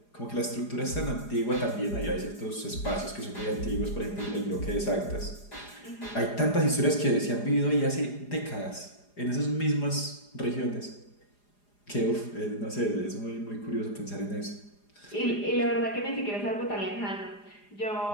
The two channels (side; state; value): right; late; 4.9 ms